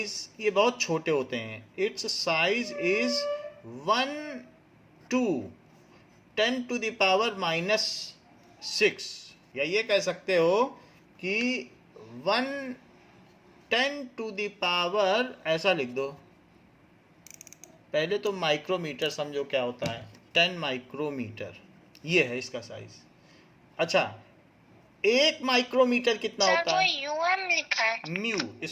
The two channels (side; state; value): both; identical; correlation 1.00